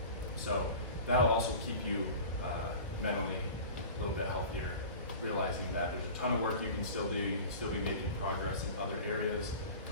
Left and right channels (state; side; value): inverted; both; correlation -0.37